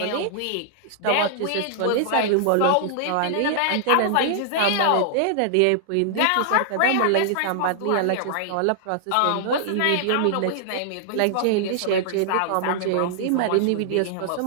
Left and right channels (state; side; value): different; both; correlation -0.01